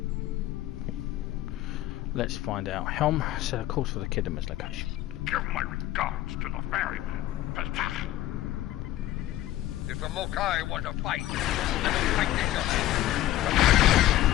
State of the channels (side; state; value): right; quieter; 14.5 dB